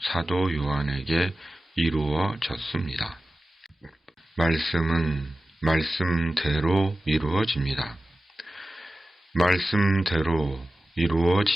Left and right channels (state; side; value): normal; both; correlation 0.95